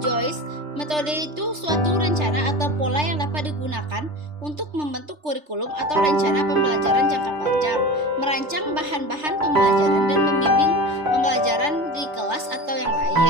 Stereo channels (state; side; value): late; left; 3.3 ms